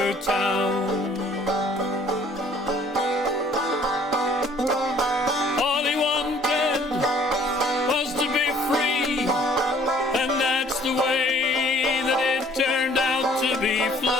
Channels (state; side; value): normal; both; correlation 0.57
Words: town. All he wanted was to be free, and that's the way that it turned out to be.